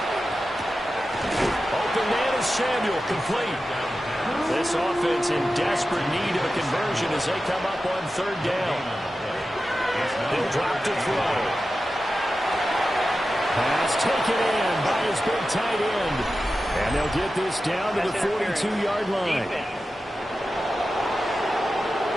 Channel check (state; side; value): normal; both; correlation 0.93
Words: Open man is Samuel, complete. This offense in desperate need of a conversion as they come up on third down. They'll drop to throw. Pass taken in by his big tight end. And they'll get this down to the 42-yard line.